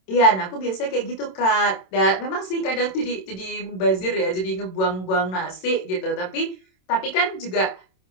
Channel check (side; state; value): right; late; 27 ms